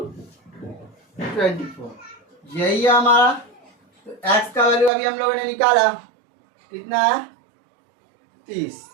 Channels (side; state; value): left; drops out; at 4.9 s